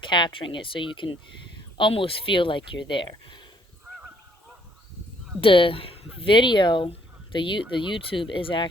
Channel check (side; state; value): both; normal; correlation 0.66